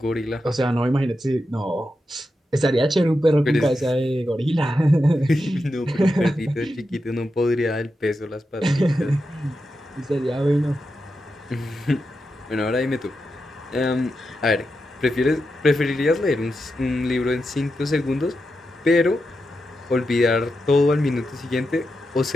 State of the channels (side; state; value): both; normal; correlation 0.88